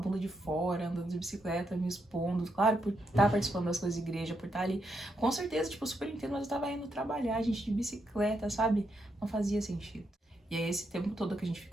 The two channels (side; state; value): both; normal; correlation 0.81